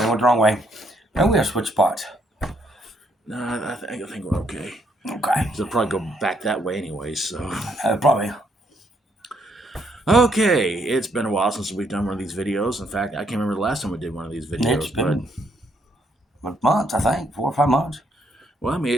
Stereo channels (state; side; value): normal; both; correlation 0.72